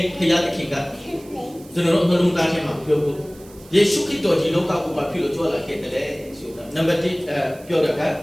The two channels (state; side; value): noise; right; hiss, 24 dB below the sound